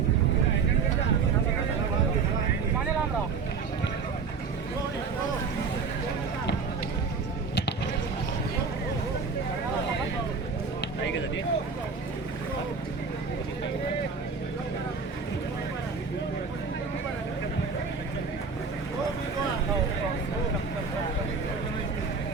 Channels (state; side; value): quieter; left; 5.1 dB